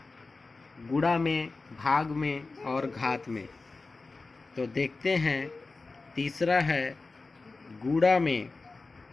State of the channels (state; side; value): quieter; right; 3.7 dB